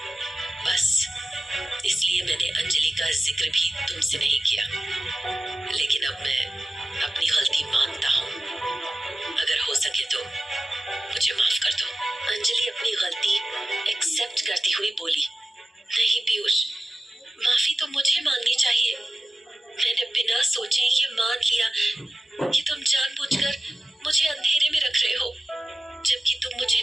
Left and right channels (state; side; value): normal; both; correlation 0.95